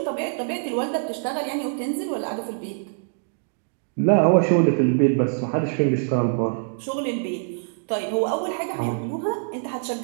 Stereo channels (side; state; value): left; silent; digital silence